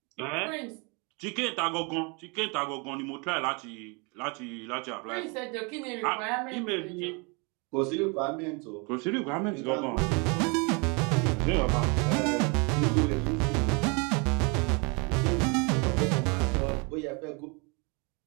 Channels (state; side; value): quieter; left; 31.5 dB